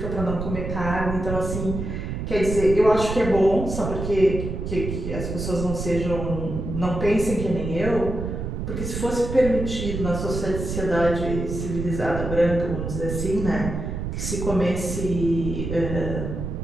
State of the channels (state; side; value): noise; right; rumble, 4 dB below the sound